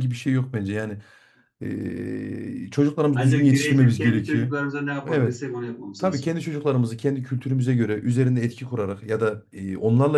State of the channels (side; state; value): both; identical; correlation 1.00